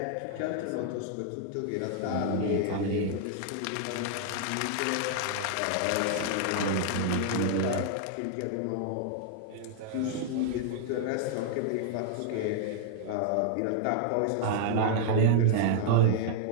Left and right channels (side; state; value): both; different; correlation 0.00